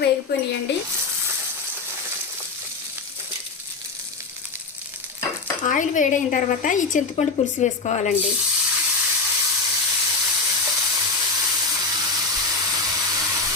వేగిపోయినాయండి. ఆయిల్ వేడైన తర్వాత ఈ చింతపండు పులుసు వేసుకోవాలండి.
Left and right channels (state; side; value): quieter; right; 4.0 dB